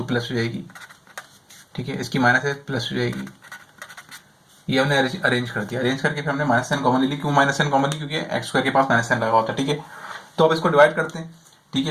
प्लस हो जाएगी, ठीक है, इसकी माइनस है प्लस हो जाएगी, ये हमने अरेंज कर दिया, अरेंज करके फिर हमने माइनस साइन कॉमन ले ली, क्यों माइनस साइन कॉमन ली, क्योंकि x स्क्वायर के पास माइनस साइन लगा होता है, ठीक है। तो अब इसको डिवाइड करते हैं, ठीक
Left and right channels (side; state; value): both; identical; correlation 1.00